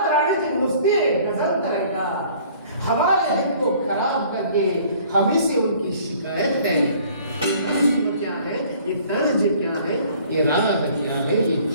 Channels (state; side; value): inverted; both; correlation -0.54